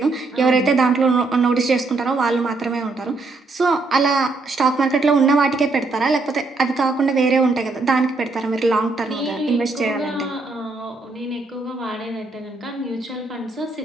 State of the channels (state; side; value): quieter; left; 3.5 dB